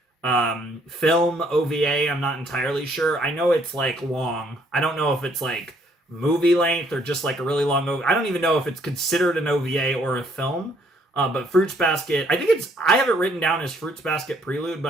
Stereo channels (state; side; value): normal; both; correlation 0.65